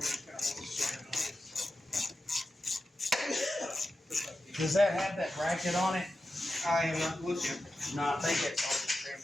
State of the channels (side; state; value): both; normal; correlation 0.91